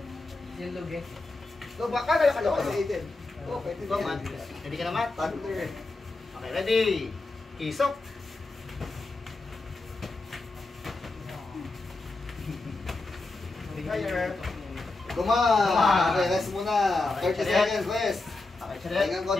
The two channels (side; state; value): right; quieter; 3.3 dB